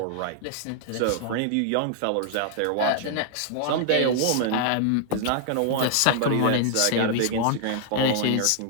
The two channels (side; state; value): both; different; correlation 0.00